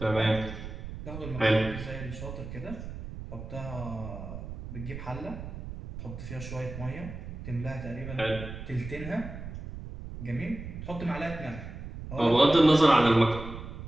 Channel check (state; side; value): noise; right; rumble, 10 dB below the sound